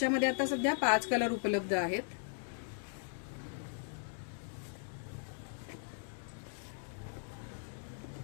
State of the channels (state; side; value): silent; right; digital silence